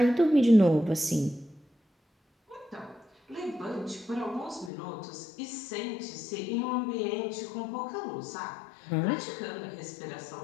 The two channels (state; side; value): drops out; right; at 4.7 s